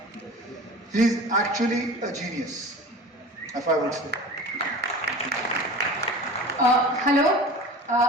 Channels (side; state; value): both; normal; correlation 0.37